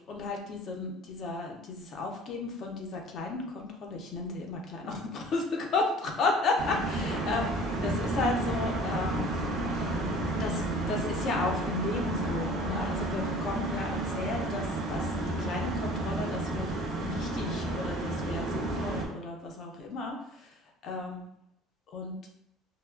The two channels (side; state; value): both; normal; correlation 0.47